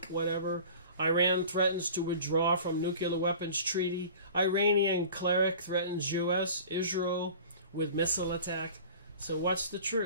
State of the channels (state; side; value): inverted; both; correlation -0.41